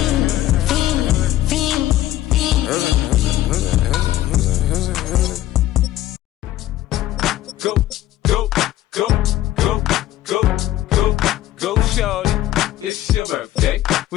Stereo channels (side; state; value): right; quieter; 14.2 dB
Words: Go, go, go, go, go, go, go, shorty. It's your birthday.